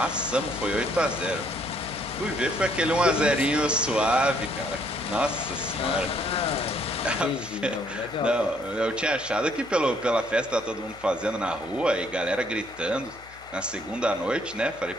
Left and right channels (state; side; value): noise; left; hum, 23 dB below the sound